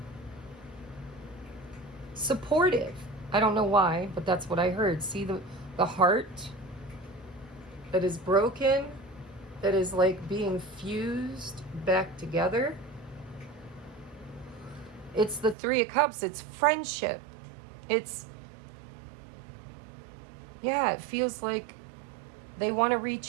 Supportive. I don't know why, but that's what I heard. See the heart that is broken, that is like being fused back together. It's the Three of Cups. It's friendship. It's, yeah, it feels like they want to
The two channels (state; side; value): drops out; left; at 15.6 s